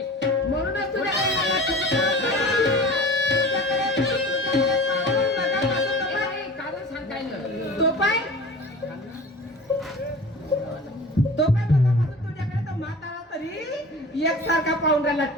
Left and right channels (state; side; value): normal; both; correlation 0.39